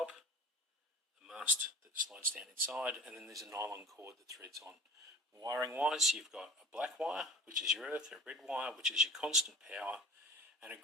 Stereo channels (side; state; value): both; normal; correlation 0.42